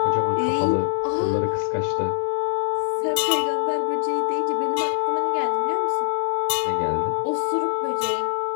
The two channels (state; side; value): silent; right; digital silence